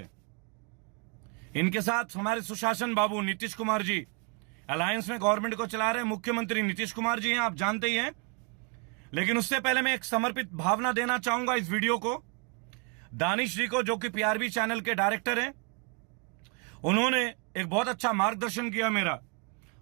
इनके साथ हमारे सुशासन बाबू नीतीश कुमार जी अलायंस में गवर्नमेंट को चला रहे मुख्यमंत्री नीतीश कुमार जी हैं, आप जानते ही हैं। लेकिन उससे पहले मैं एक समर्पित भावना देना चाहूंगा इस वीडियो को दानिश जी को, जो कि पीआरबी चैनल के डायरेक्टर हैं। उन्होंने एक बहुत अच्छा मार्गदर्शन किया मेरा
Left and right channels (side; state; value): left; quieter; 35.5 dB